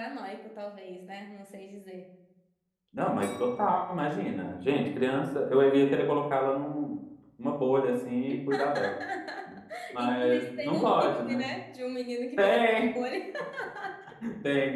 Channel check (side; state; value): both; identical; correlation 1.00